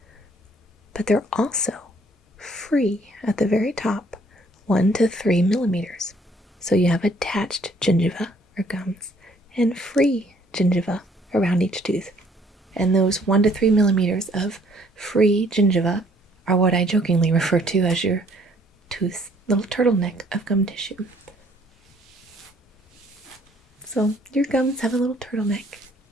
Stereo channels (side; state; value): both; normal; correlation 0.62